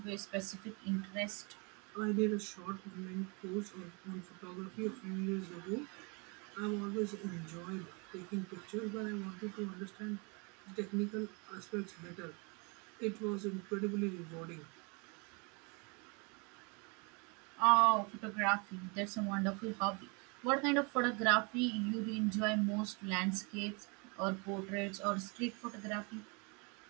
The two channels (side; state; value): left; quieter; 32.0 dB